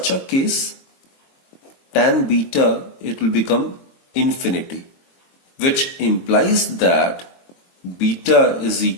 a case, tan beta, it will become infinity, which implies that beta is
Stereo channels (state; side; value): late; right; 22 ms